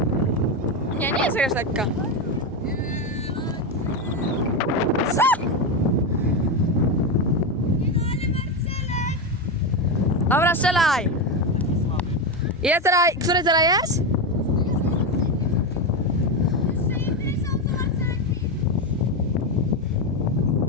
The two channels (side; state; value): both; normal; correlation 0.12